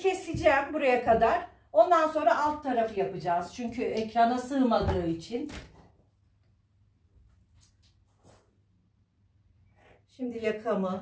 buraya kadar. Ondan sonra alt tarafı yapacağız. Çünkü ekrana sığmadığı için. Şimdi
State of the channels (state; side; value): identical; both; correlation 1.00